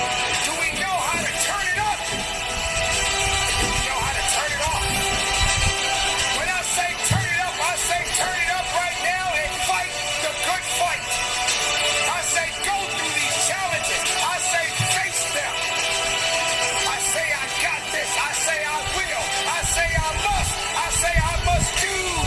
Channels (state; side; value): identical; both; correlation 1.00